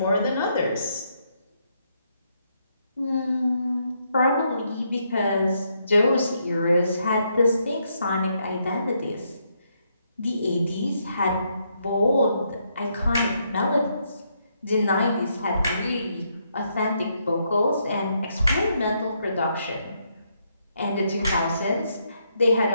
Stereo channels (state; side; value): inverted; both; correlation -0.76